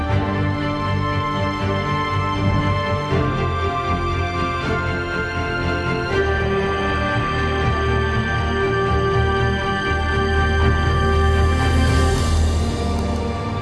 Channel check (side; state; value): both; identical; correlation 1.00